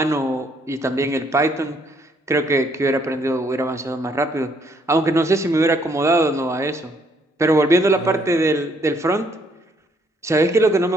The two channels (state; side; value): normal; both; correlation 0.68